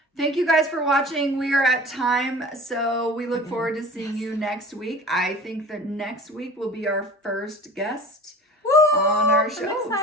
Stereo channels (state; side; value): normal; both; correlation 0.41